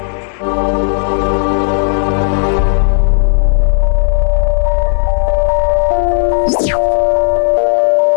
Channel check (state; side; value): silent; right; digital silence